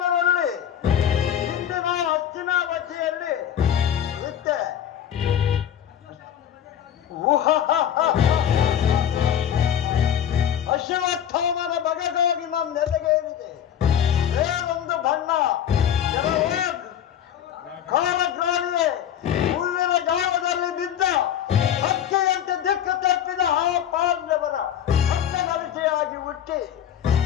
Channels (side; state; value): right; quieter; 9.8 dB